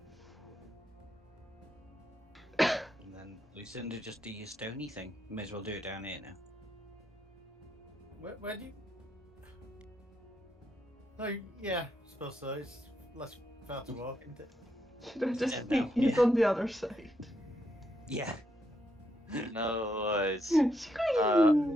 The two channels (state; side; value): normal; both; correlation 0.79